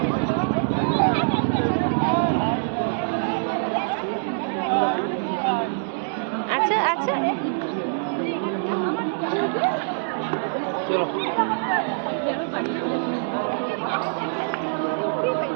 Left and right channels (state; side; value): silent; left; digital silence